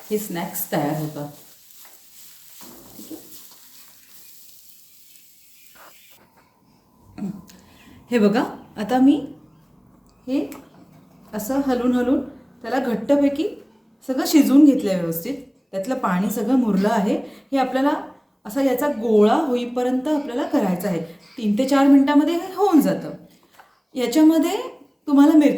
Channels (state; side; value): identical; both; correlation 1.00